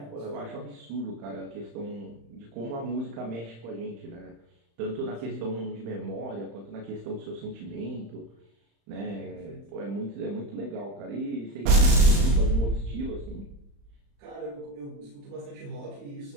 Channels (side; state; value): left; late; 35 ms